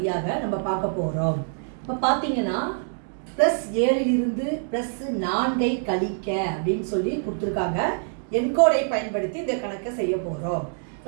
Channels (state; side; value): silent; left; digital silence